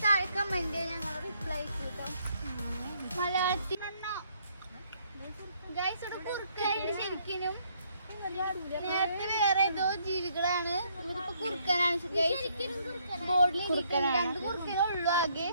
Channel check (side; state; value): both; inverted; correlation -0.69